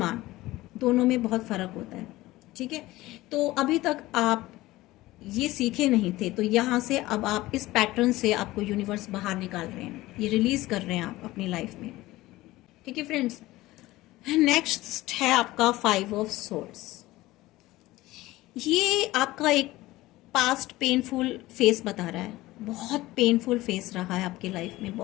दोनों में बहुत फर्क होता है, ठीक है। तो अभी तक आप ये सीखे नहीं थे, तो यहाँ से अब आप इस पैटर्न से आपको यूनिवर्स बाहर निकाल रहे हैं, ये रिलीज कर रहे हैं आप अपनी लाइफ में, ठीक है फ्रेंड्स। नेक्स्ट है आपका 5 ऑफ सोर्ड्स। ये आपका एक पास्ट पेनफुल फेस बता रहा है, बहुत पेनफुल फेस रहा है आपकी लाइफ में,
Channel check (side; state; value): right; quieter; 18.0 dB